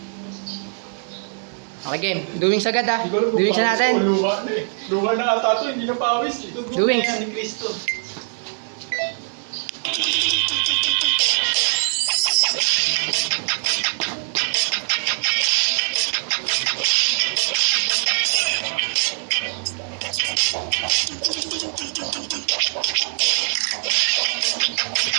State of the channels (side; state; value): left; silent; 64 dB below the other